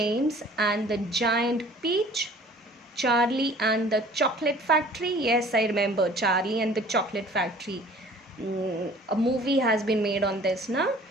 and the Giant Peach, Charlie and the Chocolate Factory. Yes, I remember Charlie and the Chocolate Factory. A movie has been made on this now.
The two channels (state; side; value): normal; both; correlation 0.50